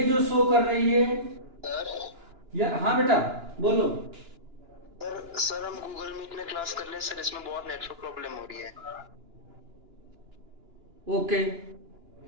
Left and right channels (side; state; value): left; late; 2.9 ms